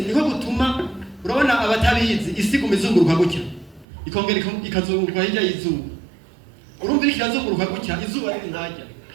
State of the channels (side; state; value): left; drops out; at 3.9 s